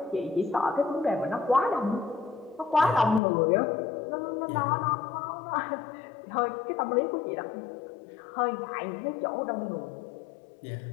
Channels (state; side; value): drops out; right; at 3.2 s